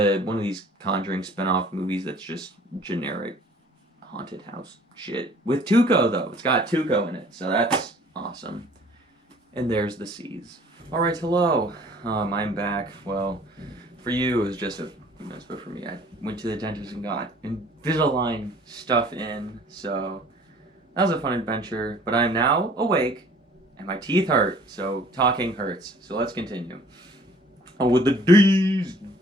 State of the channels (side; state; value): both; normal; correlation 0.53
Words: of these Conjuring spin-off movies that's just generic haunted house shit. With Tuco, though. It's got Tuco in it, so that's awesome. And there's the Seas. Alright, hello. I'm back. Well, for you, it was just a few minutes, but for me, I went to the dentist and got Invisalign stuff in, so that was a fun adventure. But I'm now awake, and my teeth hurt, so talking hurts. So let's continue. Oh, with the D's.